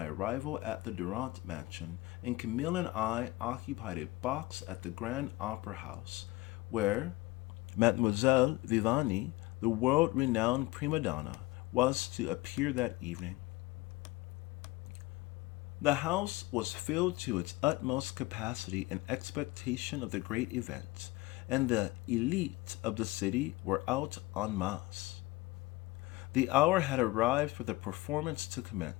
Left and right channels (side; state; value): right; quieter; 20.8 dB